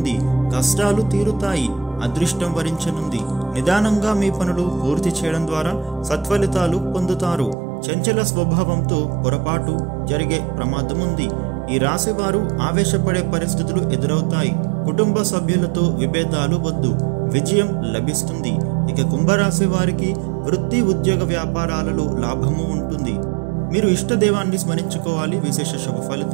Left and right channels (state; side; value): drops out; left; at 7.6 s